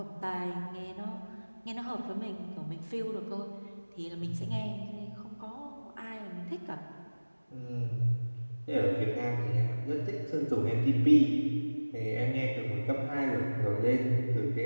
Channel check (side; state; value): both; inverted; correlation -1.00